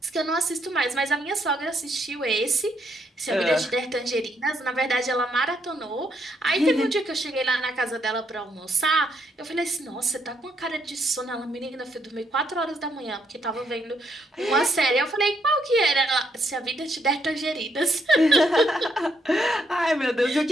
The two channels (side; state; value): both; normal; correlation 0.75